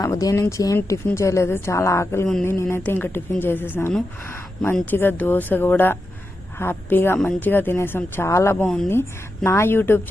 ఉదయం నుంచి ఏం టిఫిన్ చేయలేదు. చాలా ఆకలిగా ఉంది. నేనైతే ఇంకా టిఫిన్ చేసేసాను. మంచిగా దోశ కూడా హ్యాపీగా మంచిగా తినేసాం. చాలా బాగుంది. నా యూట్యూబ్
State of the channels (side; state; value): both; normal; correlation 0.88